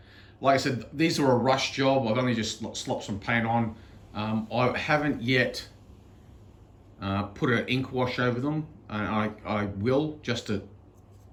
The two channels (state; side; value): identical; both; correlation 1.00